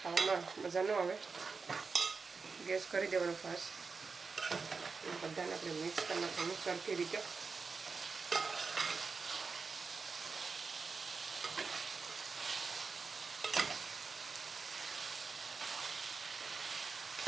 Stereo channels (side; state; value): left; quieter; 4.7 dB